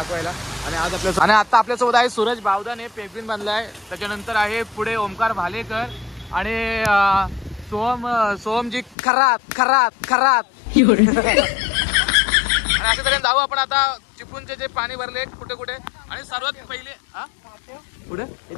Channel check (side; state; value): right; drops out; at 9.0 s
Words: आणि आज आता आपल्यासोबत आहे सूरज बावदाने पेंग्विन बांधलाय. त्याच्यानंतर आहे पुढे ओमकार भालेकर आणि सोहमजी खरात. आणि अशा तऱ्हेने जाऊ आपण आता चिपळूणचे जे पाणी भरले कुठे कुठे. आणि सर्वात पहिले पुढे